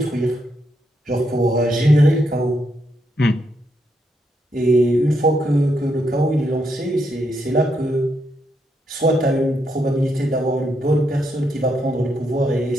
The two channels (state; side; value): normal; both; correlation 0.79